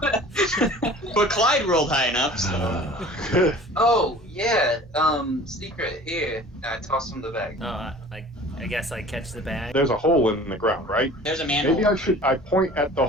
But Clyde rolled high enough, so... Oh, yeah, secret, here. I toss him the bag. I guess I catch the bag. There's a hole in the ground, right? There's a manhole. Maybe I point at the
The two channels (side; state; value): both; normal; correlation 0.45